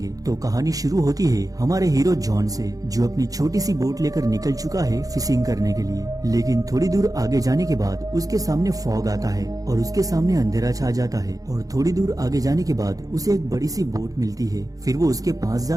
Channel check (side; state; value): left; late; 0.17 ms